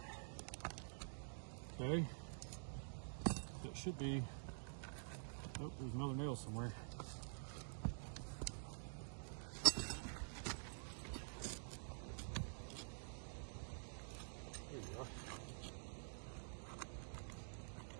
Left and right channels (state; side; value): silent; left; digital silence